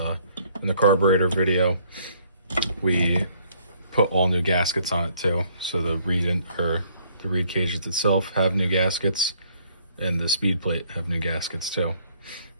in the carburetor video we put all new gaskets on it too. So the reed cages itself have new gaskets, and the speed plate have new gaskets too.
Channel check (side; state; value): both; inverted; correlation -0.63